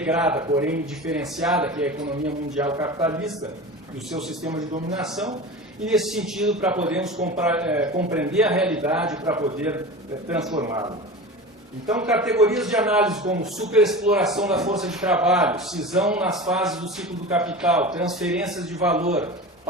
porém diferenciada, que é a economia mundial capitalista e o seu sistema de dominação, e nesse sentido para podermos compreender a realidade, para poder transformá-la. Então, categorias de análise como superexploração da força de trabalho, cisão nas fases do ciclo do capital, transferências de valor,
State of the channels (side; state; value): both; normal; correlation 0.31